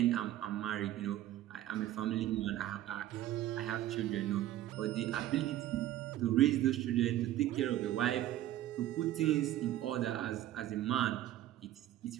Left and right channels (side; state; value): left; quieter; 13.6 dB